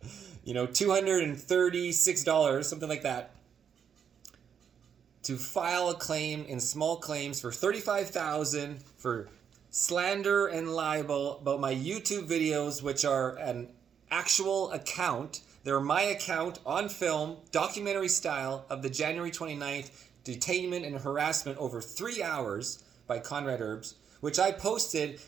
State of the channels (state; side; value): quieter; left; 7.7 dB